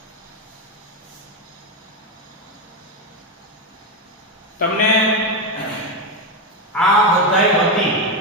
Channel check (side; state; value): both; normal; correlation 0.10